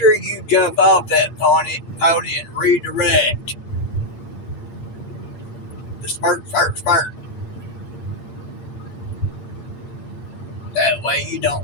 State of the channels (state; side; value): late; right; 8.6 ms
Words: you jump off that pony and redirect. The spurt. That way you